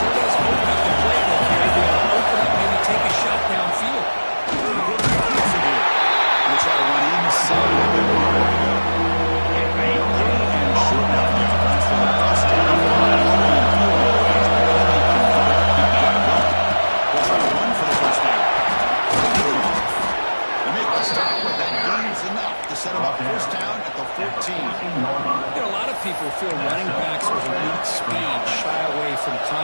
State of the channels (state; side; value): inverted; both; correlation -1.00